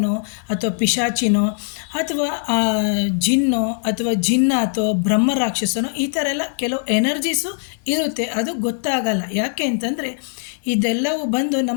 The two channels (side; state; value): right; silent; digital silence